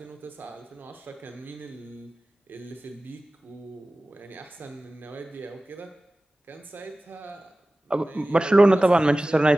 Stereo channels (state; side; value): normal; both; correlation 0.97